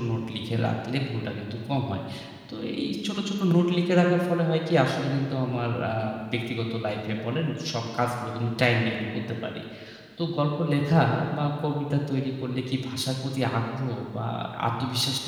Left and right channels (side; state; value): both; identical; correlation 1.00